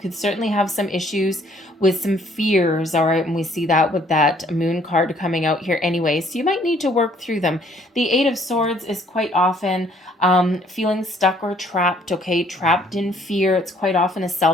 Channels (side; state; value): both; normal; correlation 0.62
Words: certainly have some issues with some fears, all right? And we see that with that Moon card coming out here anyway. So you might need to work through them. The Eight of Swords is quite often feeling stuck or trapped, okay? Trapped in fear. It's quite often a